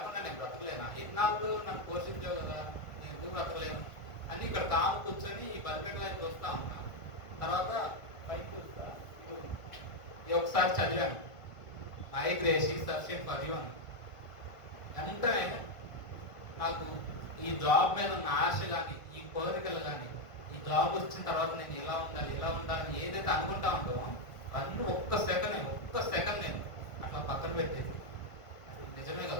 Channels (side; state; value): right; late; 1.5 ms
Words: నేను బ్రతకలేనా? ఇన్నాళ్ళు నన్ను పోషించావు కదా, నేను ఎందుకు బ్రతకలేను అని ఇక్కడ కూర్చొని ఈ బలిపేట వైపు వస్తా ఉన్నా. తర్వాత పైకి చూస్తా, ఒకసారి చదివాను, my grace is sufficient for you అని. వెంటనే నాకు ఈ జాబ్ మీద ఉన్న ఆశ కానీ, ఈ కోరికలు కానీ, ఈ జాబ్ వచ్చిన తర్వాత నేను ఇలా ఉండాలని ఏదైతే అనుకుంటా ఉందో అన్నీ ఒక్క సెకండ్ నేను అట్లా పక్కన పెట్టేది. నిజమే